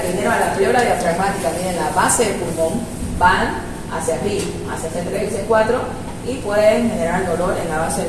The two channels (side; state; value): both; identical; correlation 1.00